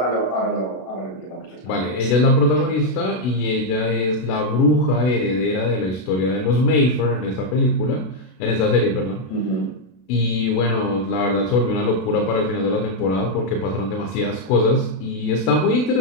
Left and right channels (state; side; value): late; right; 32 ms